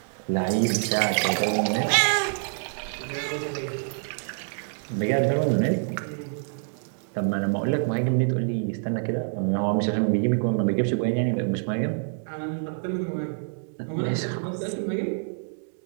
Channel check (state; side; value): silent; left; digital silence